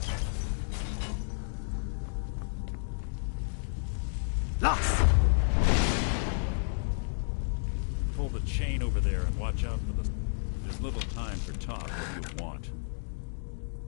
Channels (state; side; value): silent; right; digital silence